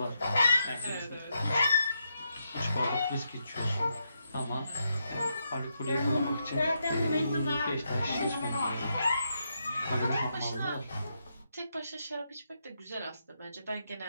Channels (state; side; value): inverted; both; correlation -0.82